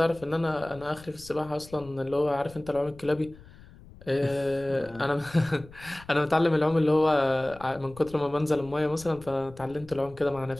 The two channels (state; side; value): noise; left; rumble, 21 dB below the sound